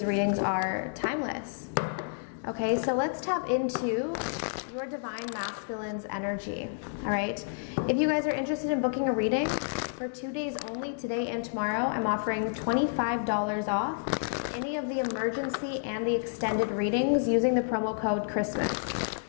readings are timeless. Okay, so let's tap into your Divine Masculine's energy, all right? If you guys are interested in booking a reading for 2 days only, today and tomorrow, I'm offering $25 off any of the emergency and the extended readings using the promo code Christmas.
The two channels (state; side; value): silent; right; digital silence